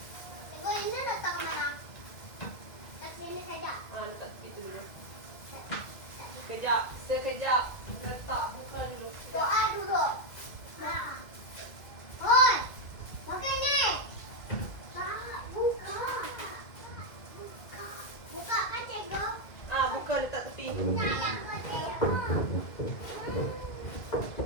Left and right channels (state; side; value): late; right; 2.0 ms